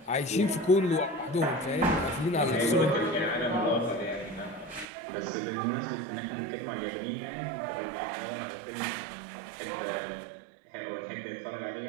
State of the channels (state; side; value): drops out; left; at 4.9 s